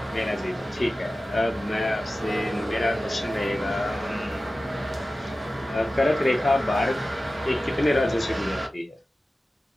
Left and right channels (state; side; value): normal; both; correlation 0.95